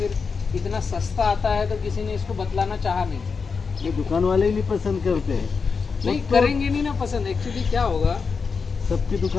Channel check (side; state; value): right; quieter; 5.2 dB